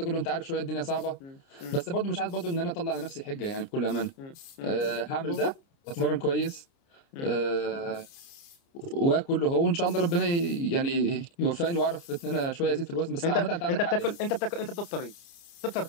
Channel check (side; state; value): right; late; 29 ms